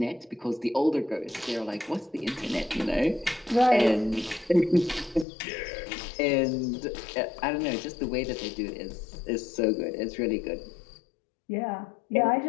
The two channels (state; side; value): drops out; right; at 5.2 s